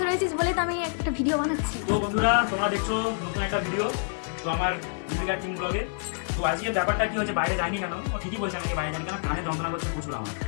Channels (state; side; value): silent; right; digital silence